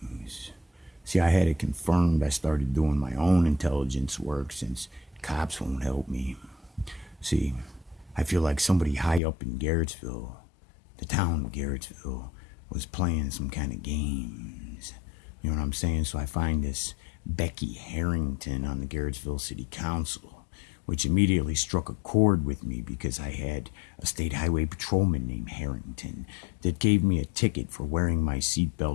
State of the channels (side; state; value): right; drops out; at 9.2 s